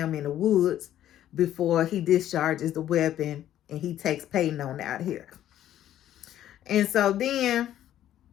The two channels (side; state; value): right; quieter; 12.0 dB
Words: in the woods before he discharges the weapon and he takes Peyton on out here. And so then